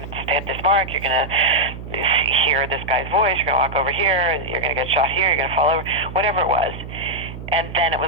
to stay at this mark, you're going to hear this guy's voice, you're going to walk over here, you're going to get shot here, you're going to fall over, whatever it was. And then it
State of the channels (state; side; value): noise; right; hum, 11 dB below the sound